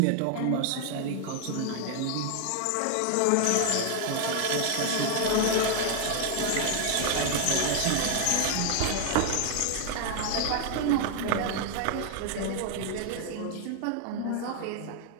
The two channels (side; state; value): both; different; correlation 0.00